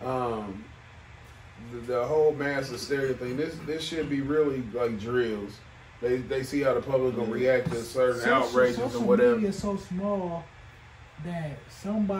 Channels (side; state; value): both; identical; correlation 1.00